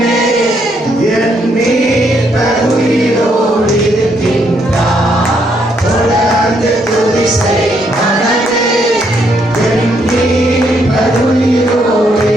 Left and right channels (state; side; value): normal; both; correlation 0.73